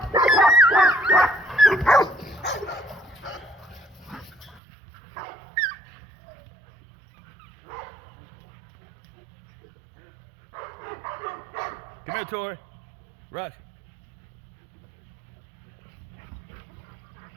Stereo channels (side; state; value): left; drops out; at 4.6 s